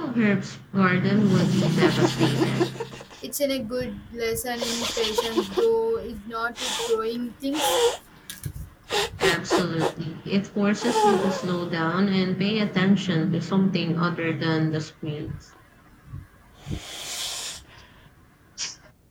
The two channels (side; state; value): both; identical; correlation 1.00